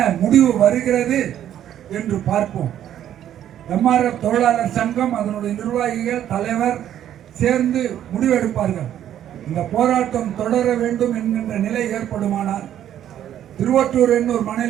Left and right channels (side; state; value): left; quieter; 10.9 dB